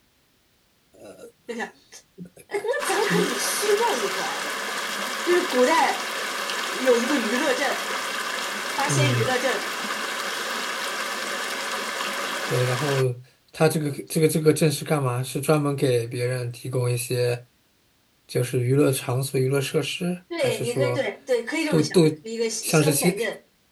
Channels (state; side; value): identical; both; correlation 1.00